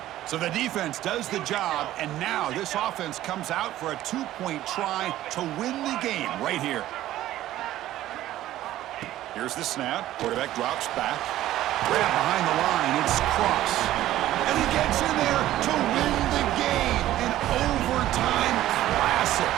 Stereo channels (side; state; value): left; quieter; 14.1 dB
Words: So the defense does the job, and now this offense comes out for a 2-point try to win the game right here. Here's the snap. Quarterback drops back. Grab behind the line. It's Cross. And he gets in there to win the game. An overtime classic.